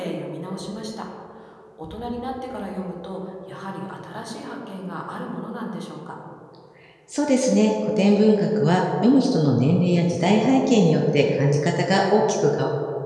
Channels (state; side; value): identical; both; correlation 1.00